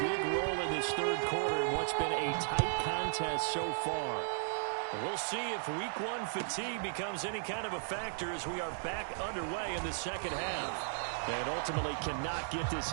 big role in this third quarter in what's been a tight contest so far. We'll see if week 1 fatigue becomes any kind of a factor as we are back underway in the second half. And ultimately cannot get this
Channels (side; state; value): left; silent; digital silence